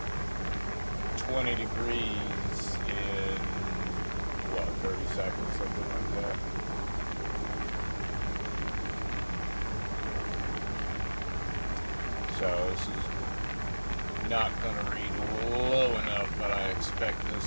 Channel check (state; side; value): inverted; both; correlation -1.00